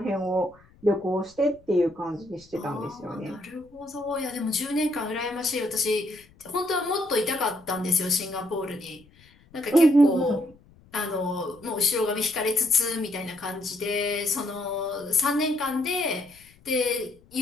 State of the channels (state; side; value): noise; left; rumble, 28 dB below the sound